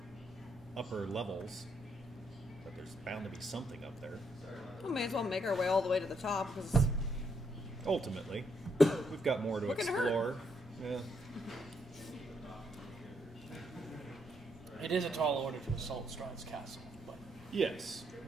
upper levels. But there's bound to be something up there. We may as well make our way all the way to the top because Ultimately, we've got more to What can hurt? explore. Yeah. It is a tall order to assault Strahd's castle, but Yes.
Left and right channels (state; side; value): normal; both; correlation 0.75